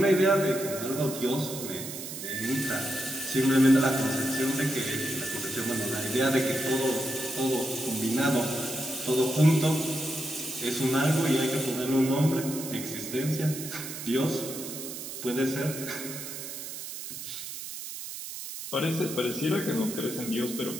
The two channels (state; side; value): noise; right; hiss, 9 dB below the sound